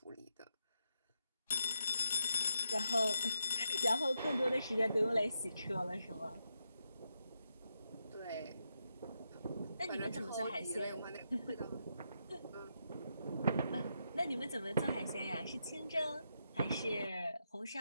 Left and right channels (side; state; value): both; inverted; correlation -0.84